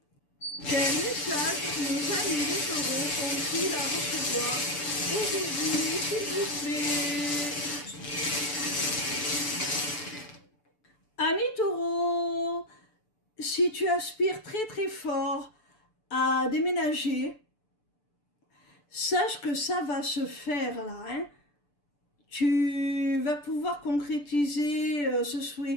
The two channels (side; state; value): right; late; 6.9 ms